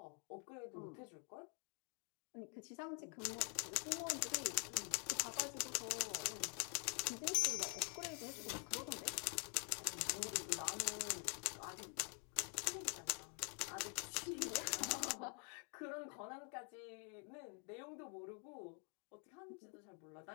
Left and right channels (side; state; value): right; quieter; 39.9 dB